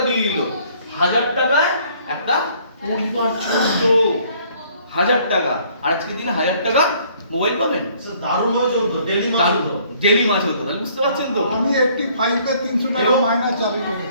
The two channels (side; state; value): both; inverted; correlation -0.60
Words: দিয়ে দিল। 1000 টাকায় একটা পরিবার চলতো, 1000 টাকা। আর আজকের দিনে 1000 টাকা মোবাইল পাবেন। স্যার দারুণ হয়ে চলতো, ডেলি মাছ হতো। ডেলি মাছ হতো, তাহলে বুঝতে পারছেন তো? আমি 85 তে 300 টাকা মাইনাস চালু